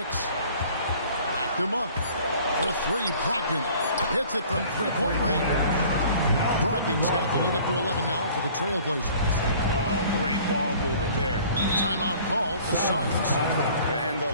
Backed him up for 3. Brogdon hits it from 3-point range. Brogdon's got the lead up to 11 now for the Trailblazers. Oh, great ball movement there. Timeout call for Suns. And the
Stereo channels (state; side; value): inverted; both; correlation -0.51